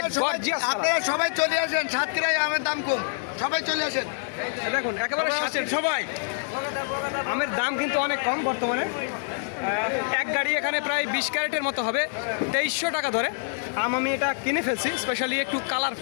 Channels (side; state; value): right; silent; digital silence